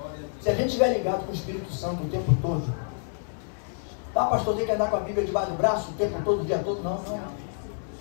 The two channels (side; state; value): right; silent; 60 dB below the other